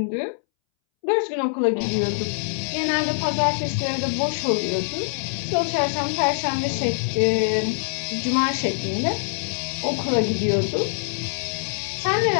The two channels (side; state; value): right; silent; 63 dB below the other